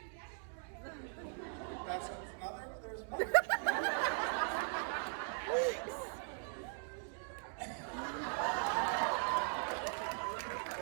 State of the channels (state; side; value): silent; left; 51 dB below the other